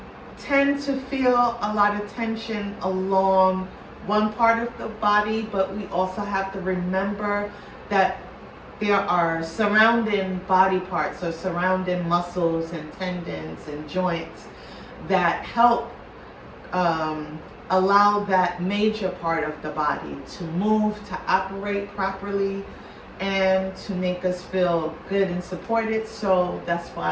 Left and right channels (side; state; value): both; identical; correlation 1.00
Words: tend to feel a lot of tension along one part of the body, but we also have to remember that there are surrounding body parts or surrounding muscles and tendons and joints that help allow that major part of the body to move, to operate properly, and to make us feel good and supported. So that's